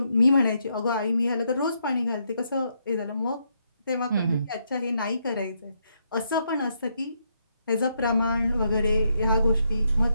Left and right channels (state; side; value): inverted; both; correlation -0.77